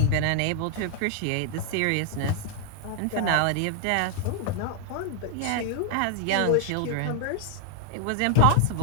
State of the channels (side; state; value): both; different; correlation 0.00